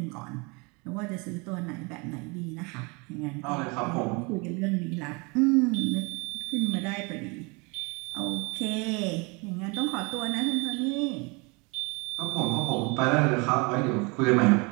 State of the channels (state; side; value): quieter; left; 29.2 dB